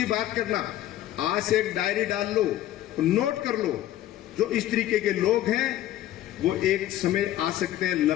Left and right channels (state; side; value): quieter; right; 13.4 dB